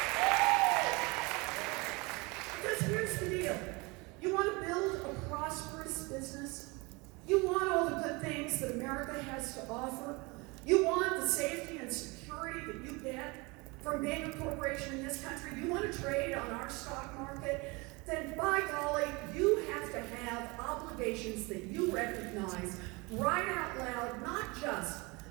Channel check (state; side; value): quieter; left; 26.3 dB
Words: Because here's the deal. You want to build a prosperous business? You want all the good things that America has to offer? You want the safety and security that you get from being a corporation in this country? You want to trade on our stock market? Then by golly, you have to have obligations that you recognize right out loud, not just